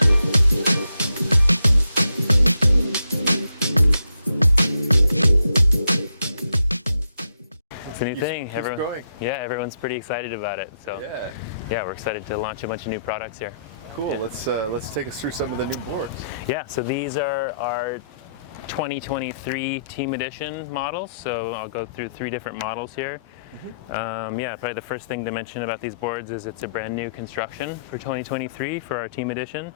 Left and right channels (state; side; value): inverted; both; correlation -0.78